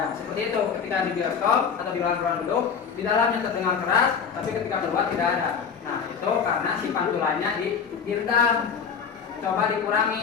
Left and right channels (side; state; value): right; quieter; 6.7 dB